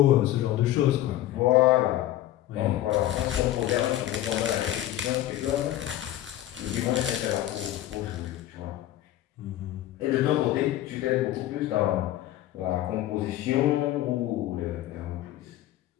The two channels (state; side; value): quieter; right; 13.8 dB